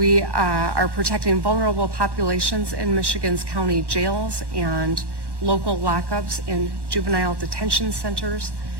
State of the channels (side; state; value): left; late; 1.1 ms